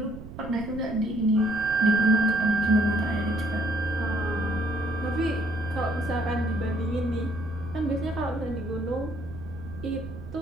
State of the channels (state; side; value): noise; right; rumble, 12 dB below the sound